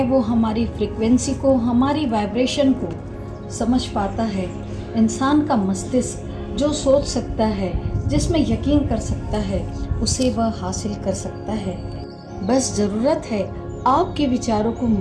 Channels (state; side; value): identical; both; correlation 1.00